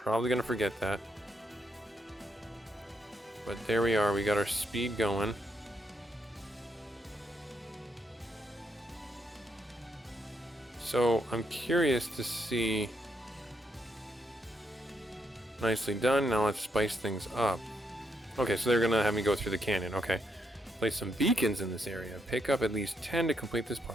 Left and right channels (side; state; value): both; normal; correlation 0.78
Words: going to forget that. But there we are. We got our speed going. So I'm curious to see. Nicely done. Now let's spice things up. Okay, so they're gonna have me go through the canyon. Okay. Place some beacons in this area. Pick up at least 10 to complete this